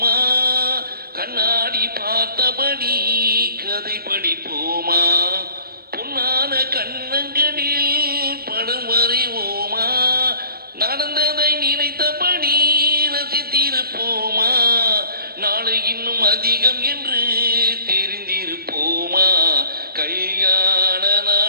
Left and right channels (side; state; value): left; late; 0.44 ms